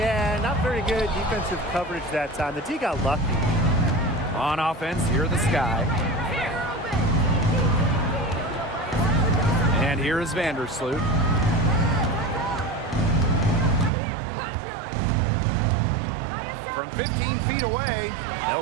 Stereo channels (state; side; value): drops out; left; at 13.9 s